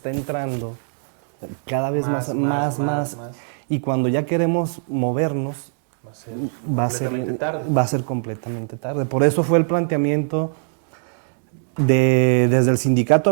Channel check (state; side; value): silent; left; digital silence